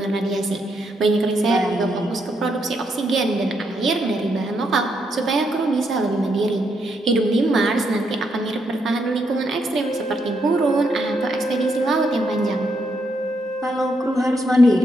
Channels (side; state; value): both; normal; correlation 0.78